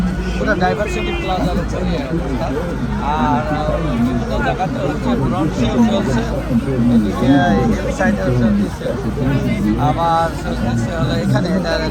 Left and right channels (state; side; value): identical; both; correlation 1.00